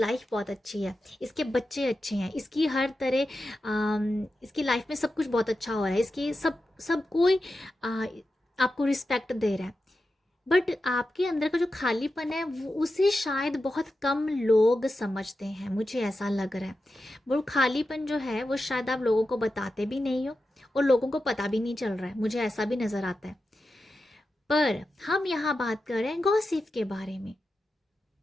बहुत अच्छी है, इसके बच्चे अच्छे हैं, इसकी हर तरह इसकी लाइफ में सब कुछ बहुत अच्छा हो रहा है, इसकी सब सब कोई आपको रिस्पेक्ट दे रहा है, बट आपके अंदर का जो खालीपन है वो उसे शायद बहुत कम लोग समझते हैं, मुझे ऐसा लग रहा है। वो खालीपन जो है वो शायद आप लोगों को बताते भी नहीं हो, और लोगों को पता भी नहीं चल रहा है, मुझे ऐसा भी नज़र आता है। पर हम यहाँ बात कर रहे हैं गॉसिप के बारे में।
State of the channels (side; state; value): both; normal; correlation 0.91